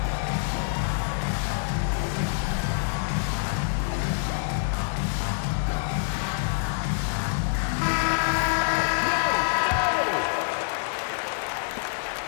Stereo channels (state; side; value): silent; right; digital silence